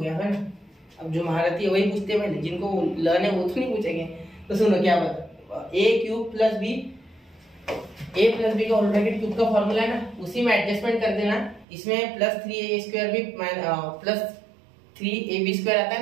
है ना? अब जो महारथी है वही पूछते हैं पहले, जिनको लर्न है वो तो नहीं पूछेंगे। तो सुनो क्या बता, a³ + b, a + b का होल ब्रैकेट क्यूब का फॉर्मूला है ना, उसी में एडजस्टमेंट कर देना। इसमें +3a² भी +3ab² आता है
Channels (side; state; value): left; drops out; at 11.7 s